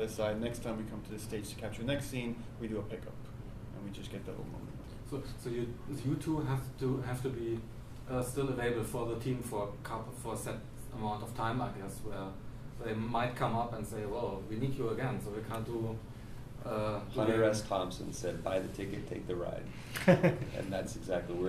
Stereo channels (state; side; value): identical; both; correlation 1.00